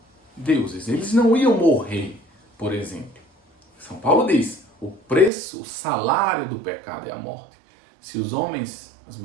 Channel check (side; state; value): left; drops out; at 5.3 s